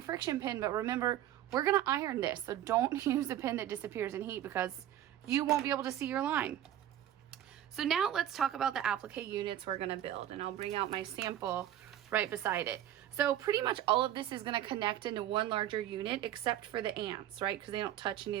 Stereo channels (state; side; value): quieter; left; 11.9 dB